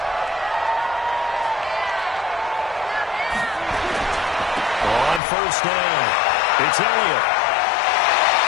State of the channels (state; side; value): drops out; right; at 5.2 s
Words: First down. It's Elliott.